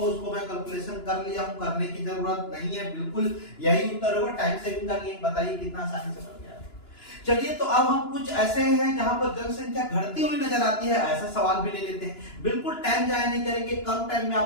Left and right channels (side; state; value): right; late; 2.9 ms